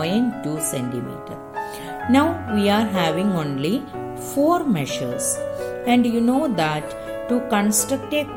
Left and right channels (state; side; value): identical; both; correlation 1.00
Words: centimeter. Now we are having only four measures, and you know that to construct a